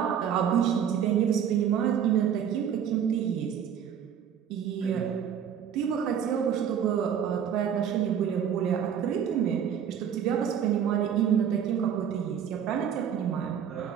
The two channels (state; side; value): quieter; left; 8.5 dB